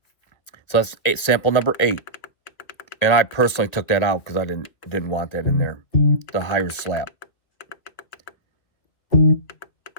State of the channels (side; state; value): right; late; 2.4 ms